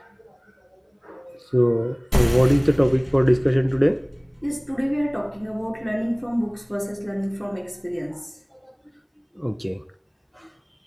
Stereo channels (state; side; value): identical; both; correlation 1.00